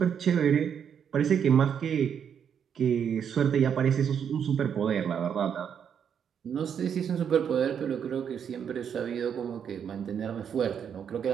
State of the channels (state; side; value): quieter; left; 7.9 dB